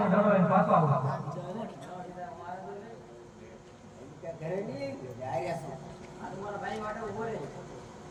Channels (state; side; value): identical; both; correlation 1.00